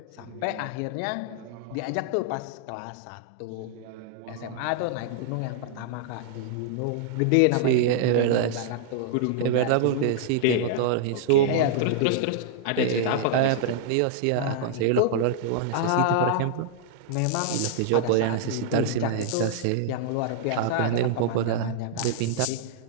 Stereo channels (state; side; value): different; both; correlation -0.01